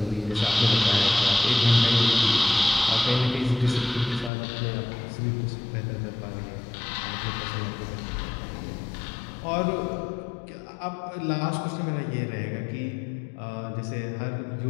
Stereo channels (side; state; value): right; drops out; at 4.3 s